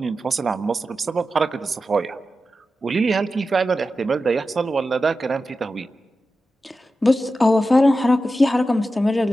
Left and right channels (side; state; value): both; normal; correlation 0.92